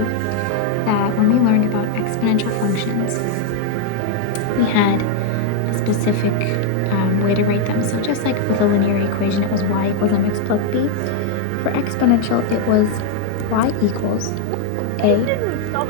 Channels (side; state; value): both; different; correlation 0.00